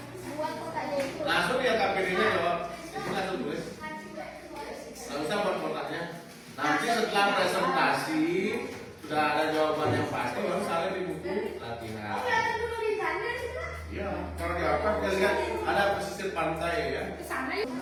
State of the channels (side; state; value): both; identical; correlation 1.00